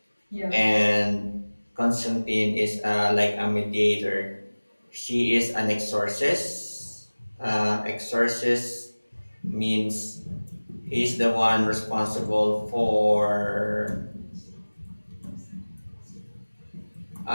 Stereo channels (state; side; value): inverted; both; correlation -1.00